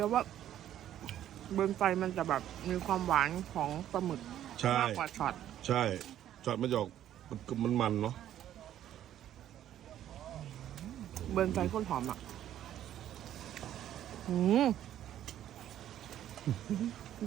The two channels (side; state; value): left; quieter; 11.5 dB